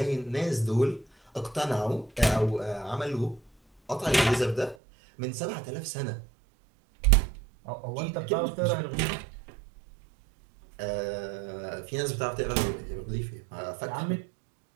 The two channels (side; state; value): left; drops out; at 4.8 s